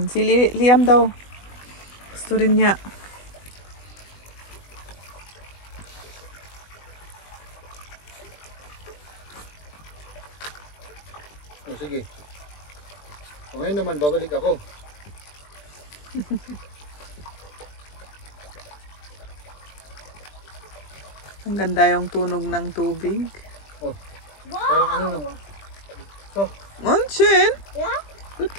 si Liam daw. Gusto rin niya. Oh, sige. O ngayon naman, babalik ako. Ang ganda yung tunog ng tubig. Oh, parang ano no. So, Onchen! Ja? Gut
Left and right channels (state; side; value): late; right; 20 ms